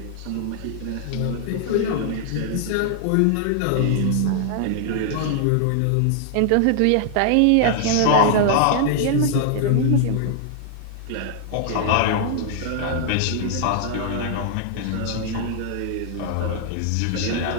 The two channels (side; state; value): both; different; correlation -0.01